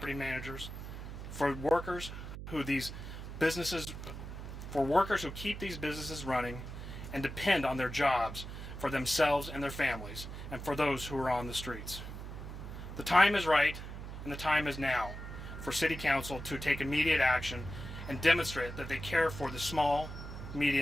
managers, for workers who keep these businesses running and depend on their jobs for themselves and their families, and for those who are on the streets. The time is right, and the time is now for City Council to take immediate action and demonstrate that they care for the small,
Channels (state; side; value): noise; right; hum, 9 dB below the sound